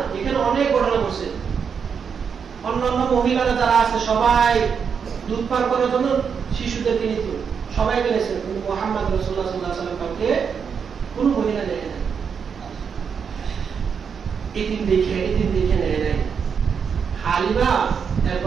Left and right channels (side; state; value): left; quieter; 6.6 dB